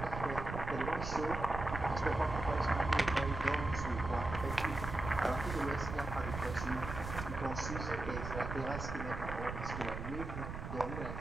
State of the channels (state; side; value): noise; right; rumble, 6 dB below the sound